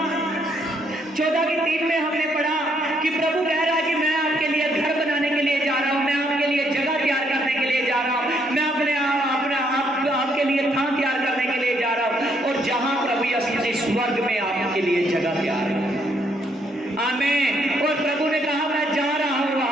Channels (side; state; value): both; normal; correlation 0.72